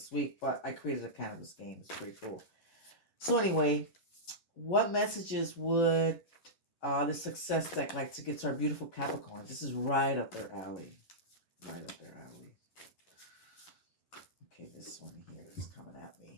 week. But I created a cannabis game. It's pretty cool. So anyway, what messages would the success deck like to give to our beautiful Capricorns? This is right up their alley. Right up their alley. Okay, this one here is coming at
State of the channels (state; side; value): late; right; 11 ms